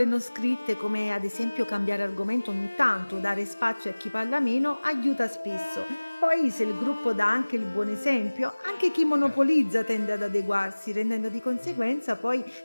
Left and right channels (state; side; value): inverted; both; correlation -1.00